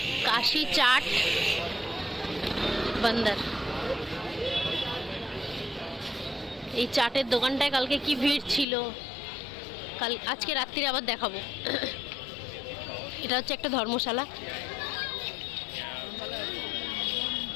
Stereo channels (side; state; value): right; drops out; at 8.7 s